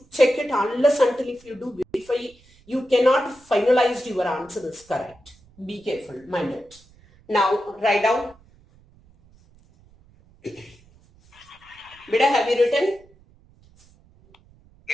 check it unless until if you do verify, you cannot finalize your answer is correct. Be careful, mind it. Now write down. Beta, have you written?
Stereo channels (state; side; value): noise; right; rumble, 29 dB below the sound